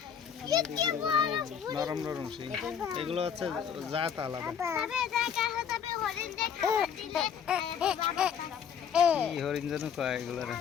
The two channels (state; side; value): quieter; right; 7.7 dB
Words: নরম নরম শিং এগুলো হচ্ছে জাত আলাদা কি হরিণ যেন কয় এগুলোর